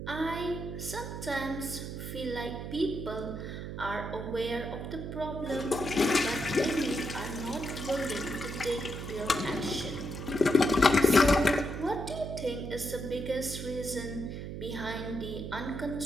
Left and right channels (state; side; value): noise; right; hum, 7 dB below the sound